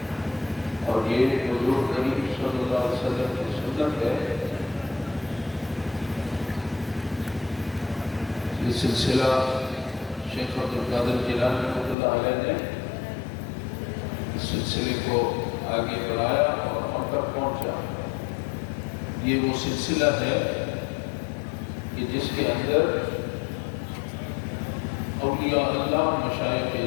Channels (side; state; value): right; drops out; at 12.0 s